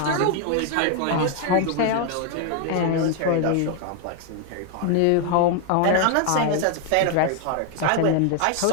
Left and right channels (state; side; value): different; both; correlation 0.00